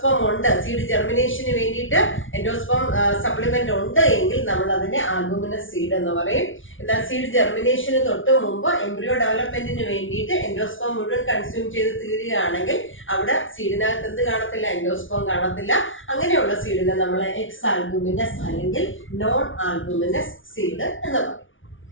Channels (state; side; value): late; right; 0.57 ms